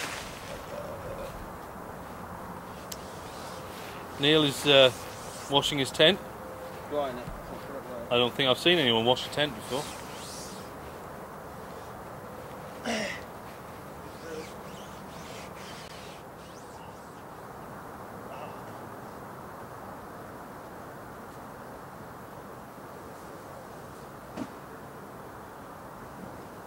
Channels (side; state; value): both; identical; correlation 1.00